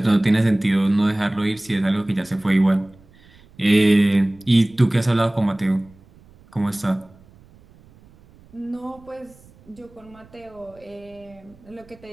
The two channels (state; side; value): noise; right; rumble, 27 dB below the sound